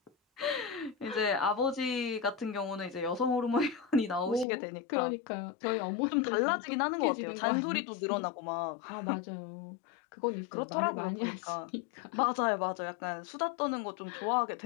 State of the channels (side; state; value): right; drops out; at 4.5 s